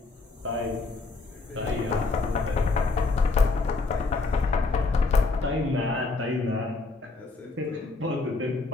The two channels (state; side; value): quieter; right; 3.7 dB